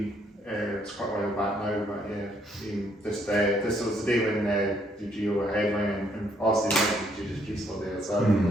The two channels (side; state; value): both; normal; correlation 0.69